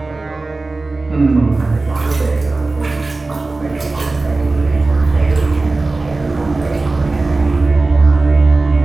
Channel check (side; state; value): left; quieter; 3.4 dB